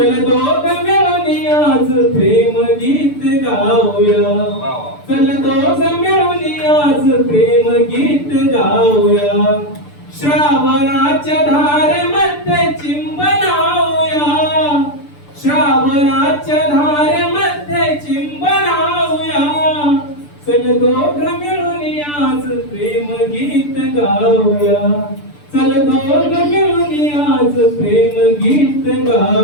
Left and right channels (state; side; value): late; right; 6.8 ms